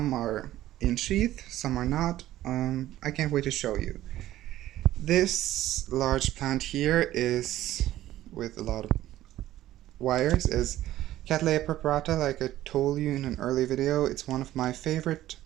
are in sheath, some are not. I can't wait to show you. This large plant here is, with a lot of wires, is Cattleya preparata. Like I told you in an early video, it's one of my favorite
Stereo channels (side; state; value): left; quieter; 14.2 dB